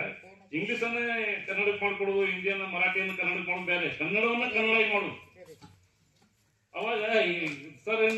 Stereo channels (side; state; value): both; identical; correlation 1.00